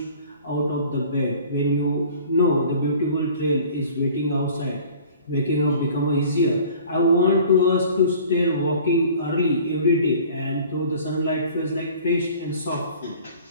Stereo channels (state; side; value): inverted; both; correlation -0.47